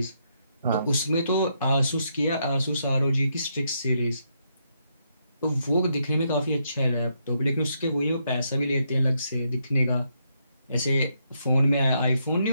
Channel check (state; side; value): inverted; both; correlation -0.78